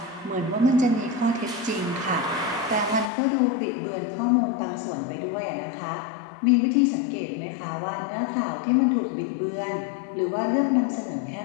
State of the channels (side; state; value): right; drops out; at 3.1 s